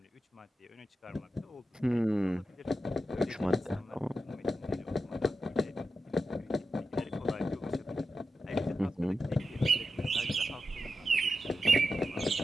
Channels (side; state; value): both; normal; correlation 0.89